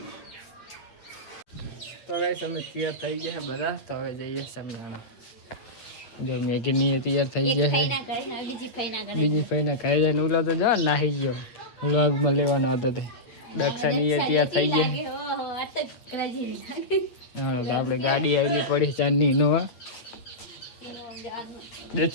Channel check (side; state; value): right; late; 8.9 ms